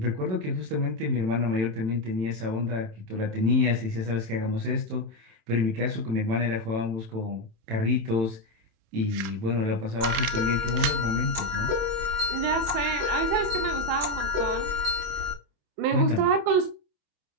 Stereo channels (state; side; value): late; left; 28 ms